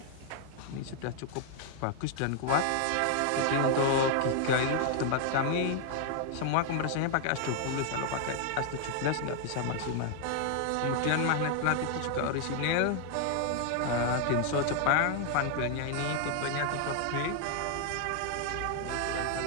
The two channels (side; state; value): both; different; correlation 0.00